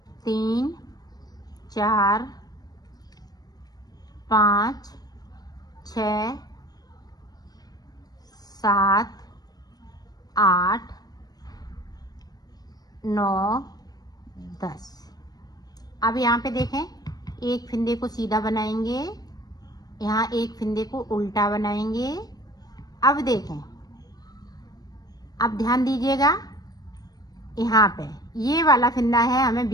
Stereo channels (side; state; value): right; late; 0.19 ms